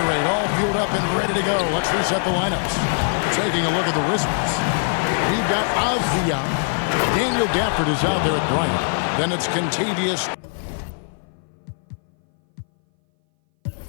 All fueled up and ready to go. Let's reset the lineups. Taking a look at the Wizards. We've got Avdia. Daniel Gafford is out there at Bryant. Then it's Contavious.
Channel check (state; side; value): silent; right; 60 dB below the other